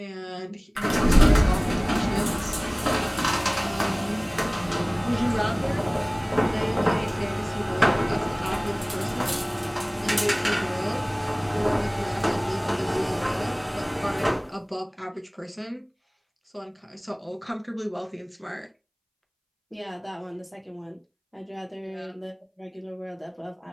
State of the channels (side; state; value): both; identical; correlation 1.00